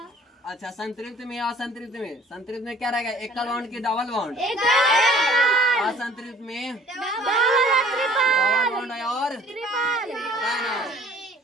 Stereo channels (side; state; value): both; normal; correlation 0.52